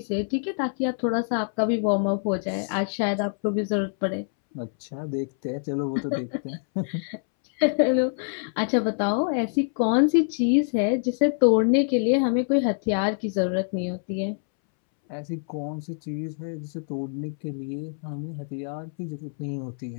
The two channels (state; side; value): silent; right; 61 dB below the other